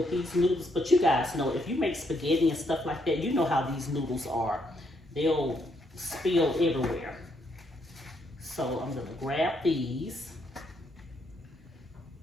these noodles. But you guys know, if you make spaghetti and stuff like that, you know how these noodles are. They'll spill everywhere. So I'm gonna grab these.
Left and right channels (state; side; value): normal; both; correlation 0.75